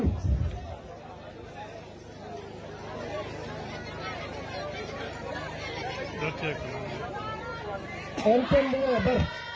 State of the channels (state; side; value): identical; both; correlation 1.00